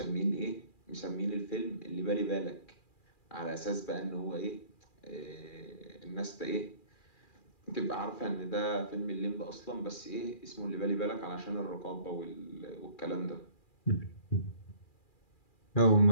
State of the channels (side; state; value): right; late; 2.4 ms